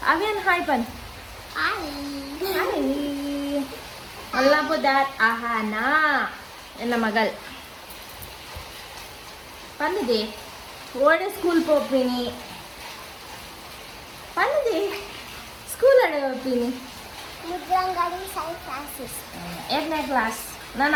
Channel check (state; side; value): identical; both; correlation 1.00